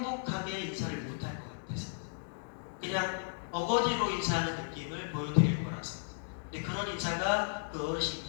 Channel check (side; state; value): right; silent; digital silence